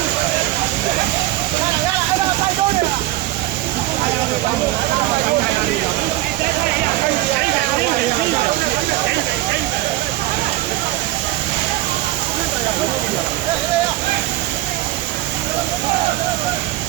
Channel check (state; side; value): quieter; left; 17.3 dB